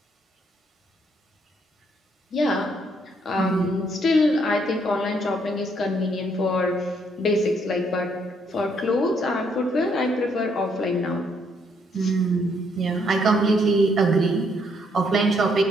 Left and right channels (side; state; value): both; normal; correlation 0.71